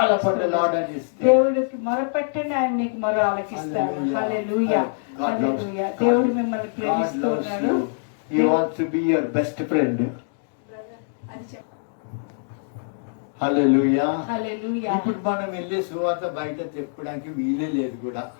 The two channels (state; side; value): silent; right; digital silence